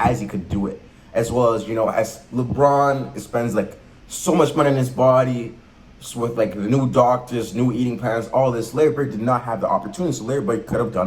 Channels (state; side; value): identical; both; correlation 1.00